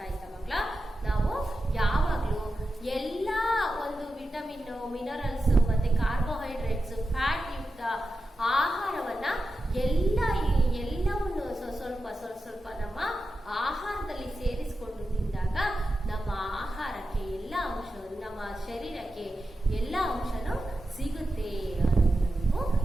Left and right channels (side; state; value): both; normal; correlation 0.91